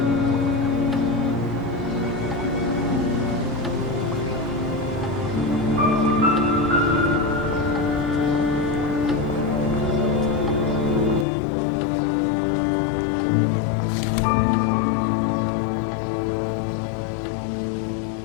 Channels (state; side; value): drops out; right; at 11.2 s